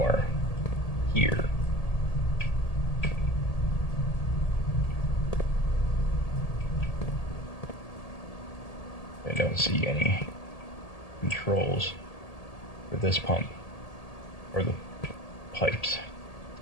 here. I don't see any controls for this pump or the pipes.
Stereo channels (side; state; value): right; late; 1.8 ms